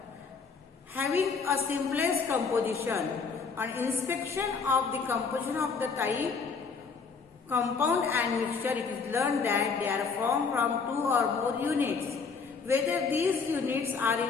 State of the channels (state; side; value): quieter; right; 5.2 dB